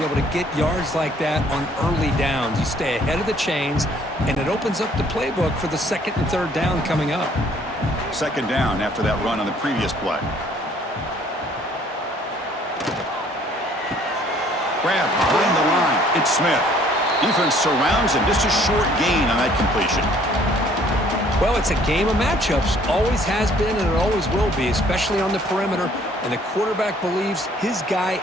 able to get yards like that on early downs. You stay ahead of the chains, and it opens up the playbook for the second and third down coming up. Second down after that run on the previous play. Grab behind the line. It's Smith. Defense surrounds him. Just a short gain on that completion. Well, it's a game of matchups. Always has been, and it always will be, especially on the perimeter. And the quarterback believes his guy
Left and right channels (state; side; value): normal; both; correlation 0.59